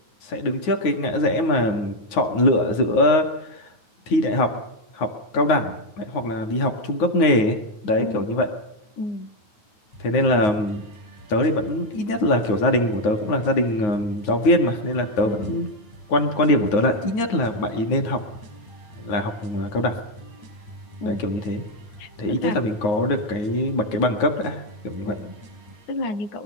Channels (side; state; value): right; late; 9.6 ms